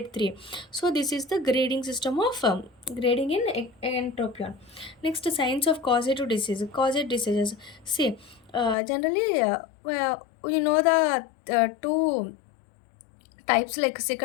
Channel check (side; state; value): right; drops out; at 8.8 s